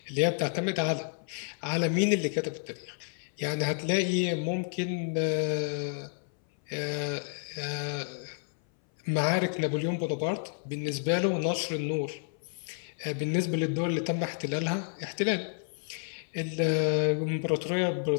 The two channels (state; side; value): silent; right; 58 dB below the other